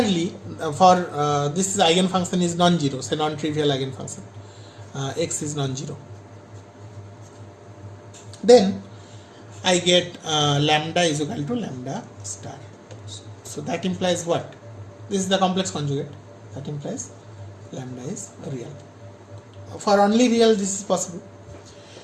for this eigenfunction is non-zero, say non-trivial eigenfunction. X is non-zero. Then I get lambda is equal to lambda star. So that implies what? This is the complex conjugate. That implies lambda is real. For only real this is possible.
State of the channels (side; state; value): both; identical; correlation 1.00